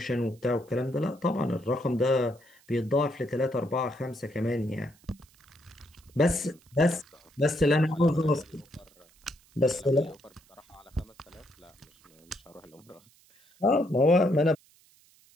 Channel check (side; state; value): right; noise; hiss, 30 dB below the sound